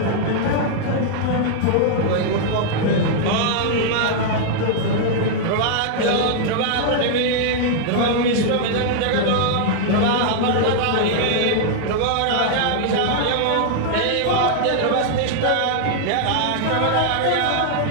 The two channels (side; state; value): both; different; correlation -0.01